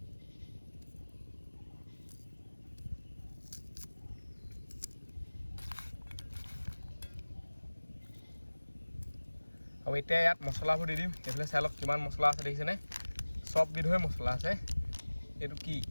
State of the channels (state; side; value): inverted; both; correlation -1.00